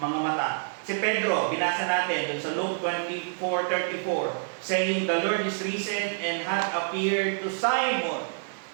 mata. Si Pedro, binasa natin dun sa Luke 24:34, saying, The Lord is risen and hath appeared to Simon.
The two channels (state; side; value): silent; left; digital silence